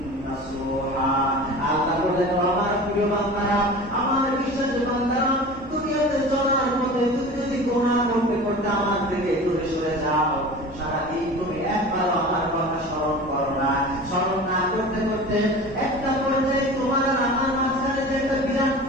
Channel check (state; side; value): noise; right; hum, 22 dB below the sound